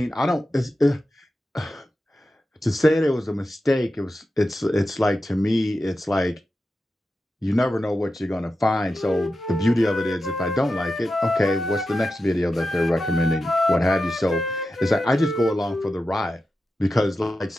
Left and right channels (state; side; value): normal; both; correlation 0.91